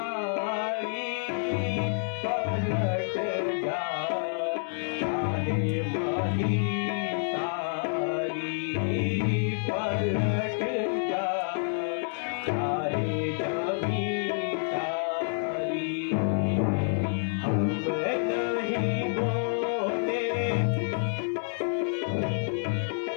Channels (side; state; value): right; silent; digital silence